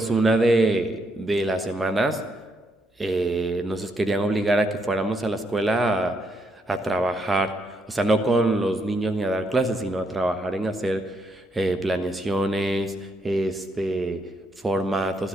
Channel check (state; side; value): normal; both; correlation 0.76